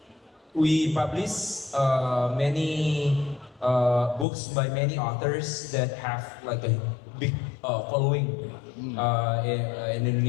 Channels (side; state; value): right; drops out; at 4.2 s